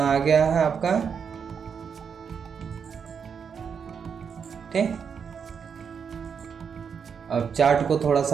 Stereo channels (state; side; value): quieter; left; 6.7 dB